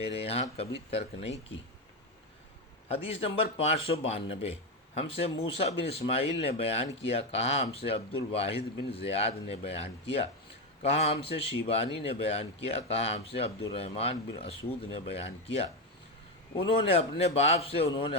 یہاں کبھی ترک نہیں کی۔ حدیث نمبر 592 ہم سے موسیٰ بن اسماعیل نے بیان کیا، کہا ہم سے عبد الواحد بن زیاد نے بیان کیا، کہا ہم سے شیبانی نے بیان کیا، کہا ہم سے عبد الرحمن بن اسود نے بیان کیا، انہوں نے اپنے باپ سے، انہوں نے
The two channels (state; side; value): normal; both; correlation 0.11